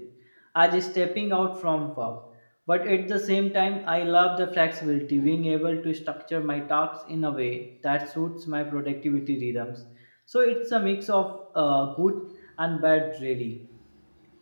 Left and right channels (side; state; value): both; inverted; correlation -1.00